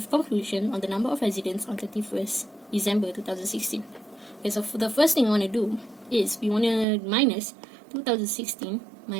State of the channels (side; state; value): left; drops out; at 6.9 s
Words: conclusion on the number of residents on 31st December 2016. Okay, so for the first thing I want to do is we want to minus 2016